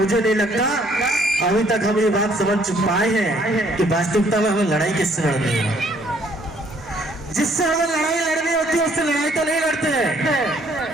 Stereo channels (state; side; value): normal; both; correlation 0.63